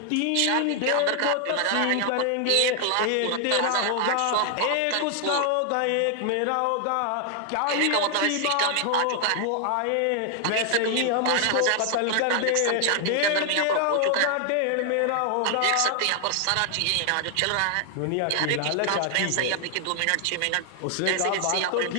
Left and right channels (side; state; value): both; different; correlation 0.00